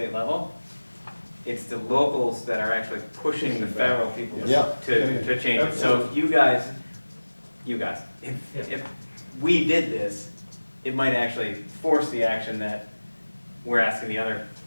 level. It's the locals that are actually pushing the federal people Yeah. to change it. So if you guys, if we did this, it might actually force the action that we're asking the other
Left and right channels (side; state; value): both; inverted; correlation -1.00